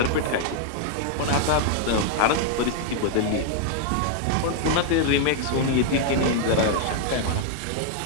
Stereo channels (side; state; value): both; different; correlation 0.00